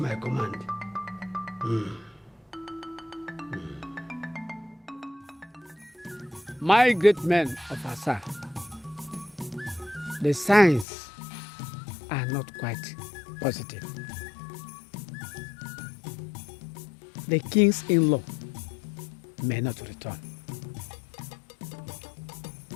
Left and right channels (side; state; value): right; drops out; at 10.9 s